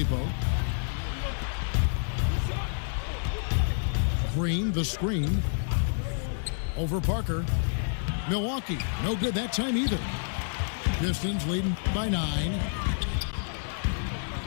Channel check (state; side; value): silent; right; 59 dB below the other